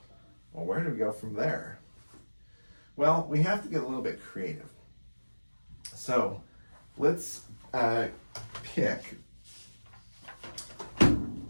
Well, where do we go from there? Well, we have to get a little bit creative. So let's pick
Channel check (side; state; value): both; inverted; correlation -1.00